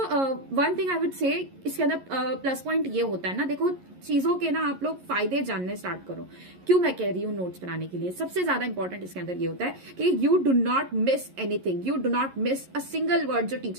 one thing I would say, इसके अंदर प्लस पॉइंट ये होता है ना, देखो चीजों के ना आप लोग फायदे जानने स्टार्ट करो। क्यों मैं कह रही हूँ नोट्स बनाने के लिए सबसे ज्यादा इंपॉर्टेंट इसके अंदर ये होता है कि you do not miss anything, you do not miss a single word जो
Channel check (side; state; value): left; late; 11 ms